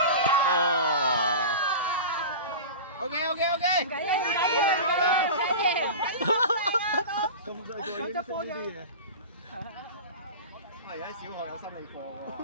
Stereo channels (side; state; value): both; inverted; correlation -0.31